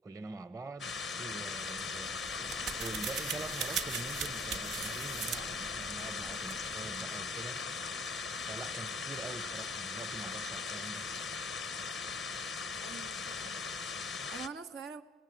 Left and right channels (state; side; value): normal; both; correlation 0.55